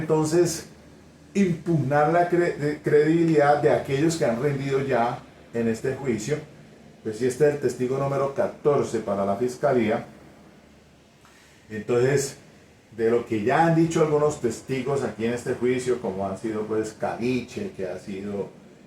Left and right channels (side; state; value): both; identical; correlation 1.00